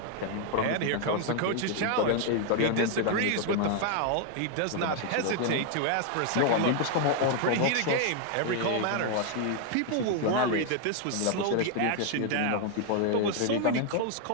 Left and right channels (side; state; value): both; different; correlation 0.00